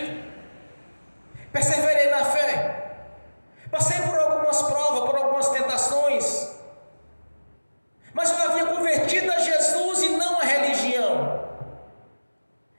Perseverei na fé. Passei por algumas provas, por algumas tentações, mas eu havia convertido a Jesus e não a religião.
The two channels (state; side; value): inverted; both; correlation -1.00